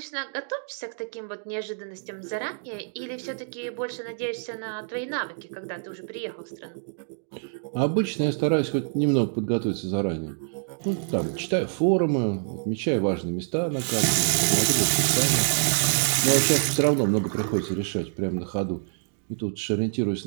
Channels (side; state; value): left; silent; digital silence